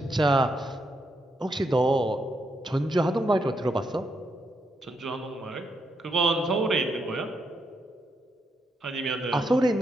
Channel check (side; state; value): both; normal; correlation 0.80